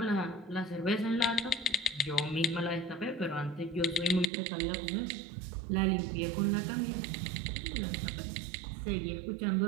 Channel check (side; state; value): left; drops out; at 4.3 s